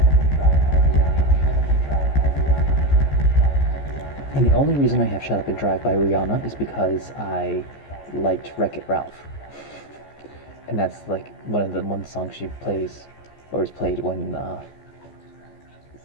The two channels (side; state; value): right; late; 14 ms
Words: And the only reason I have Shut Up and Drive by Rihanna is because I liked Wreck-It Ralph. And that's like one song she plays, or is played when